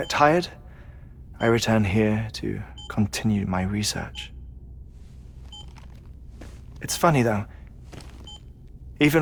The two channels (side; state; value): both; identical; correlation 1.00